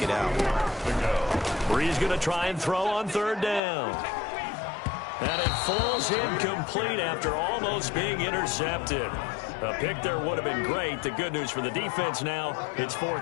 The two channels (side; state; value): right; drops out; at 3.6 s